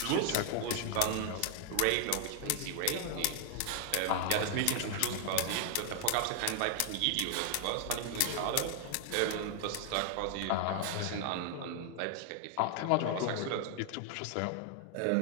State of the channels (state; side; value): different; both; correlation 0.00